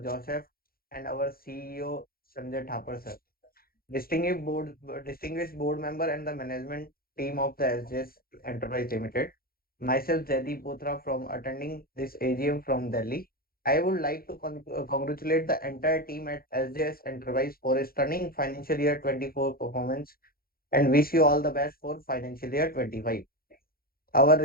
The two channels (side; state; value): right; late; 0.43 ms